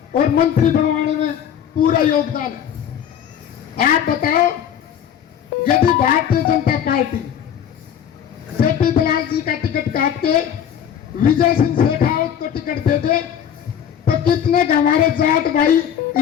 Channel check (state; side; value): quieter; right; 9.0 dB